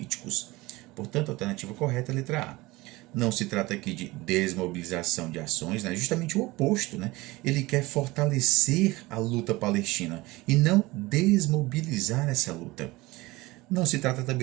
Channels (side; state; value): left; quieter; 20.9 dB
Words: Portanto, a alternativa correta é a letra A. Não se trata aqui de desmobilização de ações, né? Justamente o oposto, né? Ele quer fortalecer a luta palestina e não desmobilizar essa luta. Não se trata